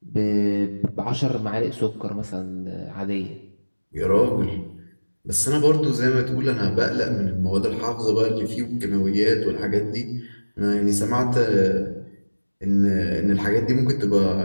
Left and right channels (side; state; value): both; inverted; correlation -1.00